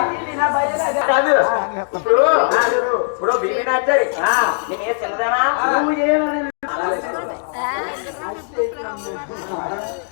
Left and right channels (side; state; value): right; silent; digital silence